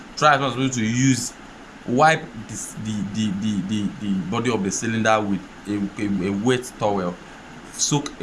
try as much as possible to wipe the body of the cylinder with a wet towel. Soak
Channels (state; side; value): identical; both; correlation 1.00